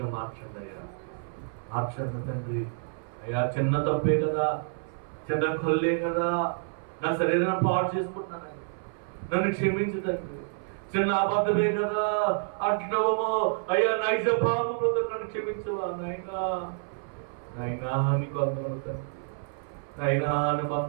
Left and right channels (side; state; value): left; silent; 59 dB below the other